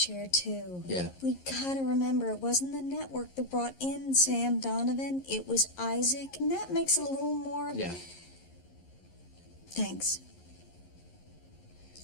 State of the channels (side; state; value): right; late; 11 ms